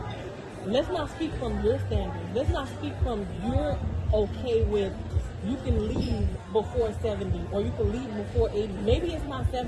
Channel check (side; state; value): both; identical; correlation 1.00